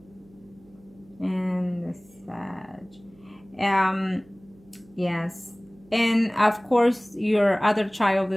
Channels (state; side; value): noise; right; hum, 28 dB below the sound